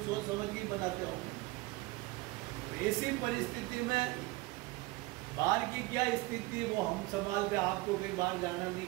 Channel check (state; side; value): quieter; left; 21.6 dB